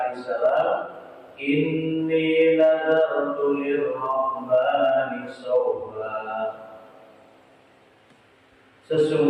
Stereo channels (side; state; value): both; identical; correlation 1.00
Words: inni nadartu lirrahmani sawma.